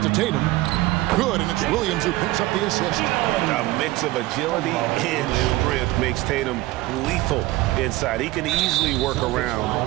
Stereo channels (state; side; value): quieter; left; 18.5 dB